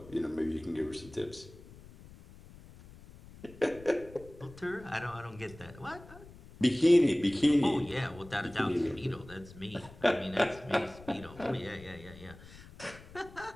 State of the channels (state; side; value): noise; left; rumble, 19 dB below the sound